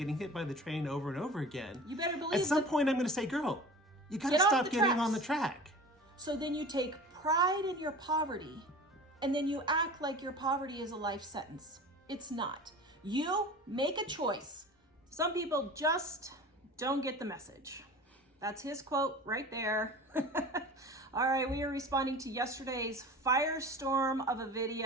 hit by the train over and over again, you better believe at some point I'm going to say, girl, you got to stop getting on the track. So then you take pride in your poverty and then you act like your poverty is a life sentence. It's not. You make a choice. Some people just don't get the message. That's his quote right there. All right, we are responding to yesterday's firestorm of a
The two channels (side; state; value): both; normal; correlation 0.38